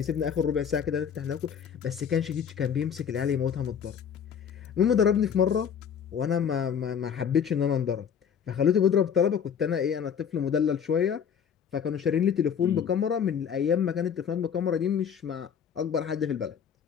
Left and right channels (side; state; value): right; quieter; 7.6 dB